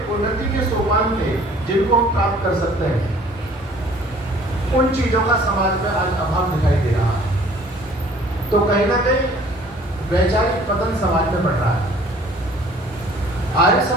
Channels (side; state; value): both; normal; correlation 0.54